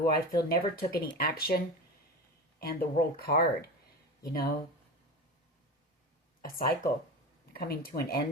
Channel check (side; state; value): both; normal; correlation 0.27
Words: I feel never took any action. And the World card, you know. A cycle coming to an